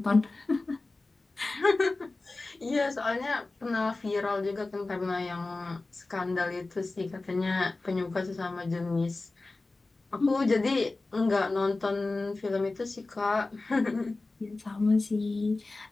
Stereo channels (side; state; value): right; quieter; 3.3 dB